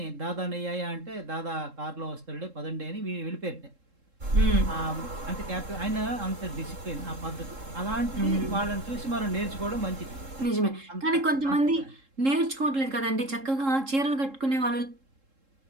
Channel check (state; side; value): late; left; 3.7 ms